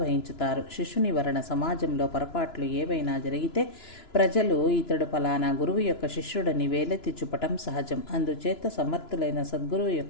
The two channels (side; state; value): right; late; 2.9 ms